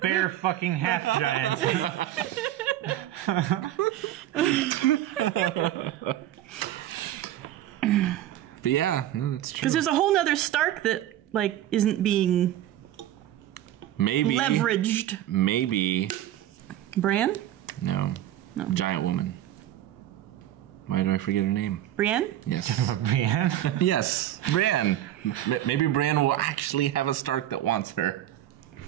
bear fucking half giant. But yeah, no, that's true. Because there's a whole nother Stark that, like, isn't being leveraged. Maybe. Bran? No. Giant woman. Why do I forget her name? Brienne? Yes. Brienne? Yes, Bran. Maybe Bran will actually have a Stark that wants her.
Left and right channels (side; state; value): left; quieter; 12.8 dB